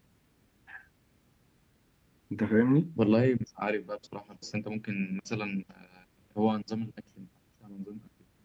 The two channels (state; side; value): identical; both; correlation 1.00